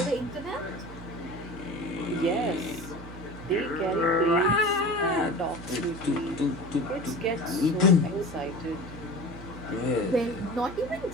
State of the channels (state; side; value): noise; right; hum, 14 dB below the sound